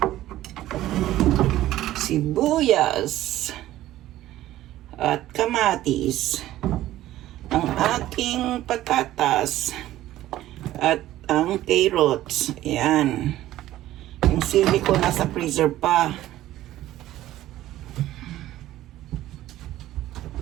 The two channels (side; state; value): left; quieter; 14.5 dB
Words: sibuyas at kamatis. Ang aking patatas at ang carrots. Ayan. Yung sili ko nasa freezer pa.